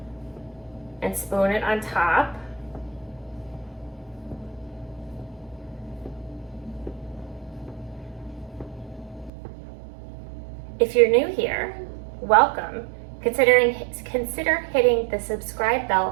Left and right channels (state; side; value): drops out; left; at 9.3 s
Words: and spoon it on top. If you're new here, welcome. Consider hitting the subscribe bell